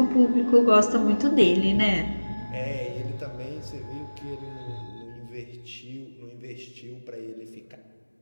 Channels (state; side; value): inverted; both; correlation -1.00